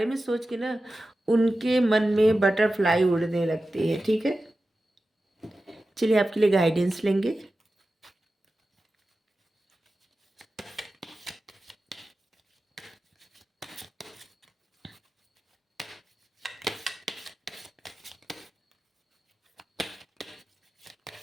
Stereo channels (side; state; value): both; normal; correlation 0.94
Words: में सोच के ना, उनके मन में बटरफ्लाई उड़ने लगती है, ठीक है? चलिए, आपके लिए गाइडेंस लेंगे।